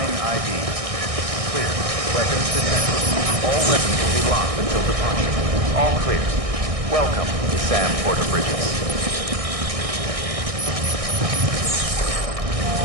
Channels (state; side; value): late; left; 1.6 ms